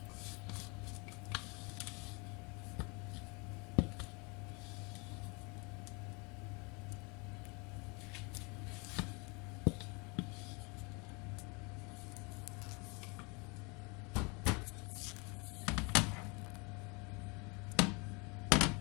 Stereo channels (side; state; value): right; quieter; 30.0 dB